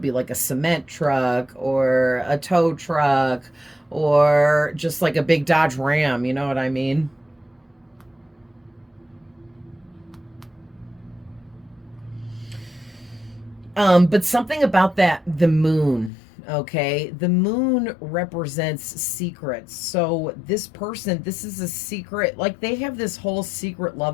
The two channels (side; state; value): right; drops out; at 16.1 s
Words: be like a cement truck or a tow truck or just like a big Dodge Ram, you know what I mean? But something about that, the moon, okay? The moon represents secrets. So this person, this is a secret, like they have this whole secret